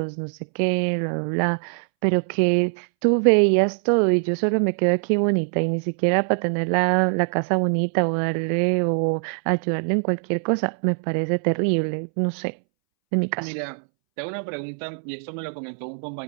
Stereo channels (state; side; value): silent; left; 64 dB below the other